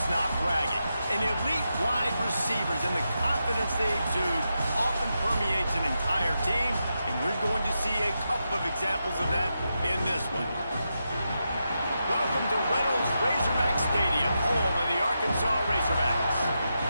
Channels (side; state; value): both; inverted; correlation -0.87